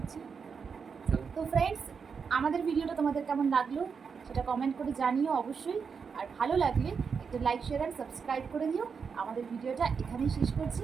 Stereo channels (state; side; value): quieter; left; 5.9 dB